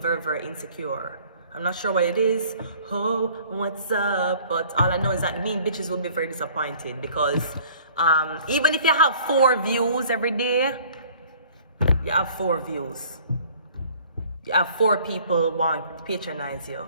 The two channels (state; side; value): inverted; both; correlation -0.53